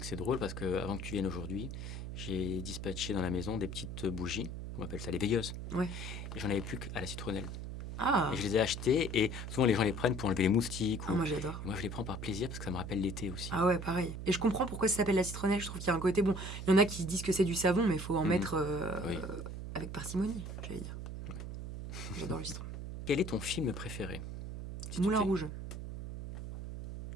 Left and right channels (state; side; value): noise; right; hum, 7 dB below the sound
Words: c'est drôle parce que avant que tu viennes aujourd'hui, j'ai dispatché dans la maison des petites bougies, on appelle ça les veilleuses. Ouais. Et j'en avais plus qu'à la citronnelle. Ah, Et je les ai achetées, et souvent les gens les prennent pour enlever les moustiques. moi j'adore. Et moi, je les prends par plaisir parce que ça me rappelle l'été aussi. Ah ouais, pareil. Et je comprends pourquoi ça s'appelle la citronnelle. Je trouve qu'il y a un côté bon. Il y en a qui disent que c'est du savon, mais il faut en mettre Oui. avec parcimonie, j'allais dire. J'adore le citron. Quel est ton film préféré? Si tu Moulin devais- Rouge.